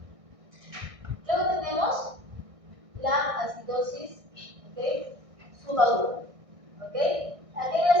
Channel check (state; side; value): late; left; 1.6 ms